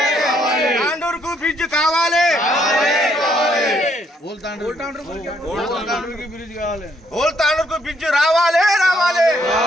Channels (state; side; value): normal; both; correlation 0.70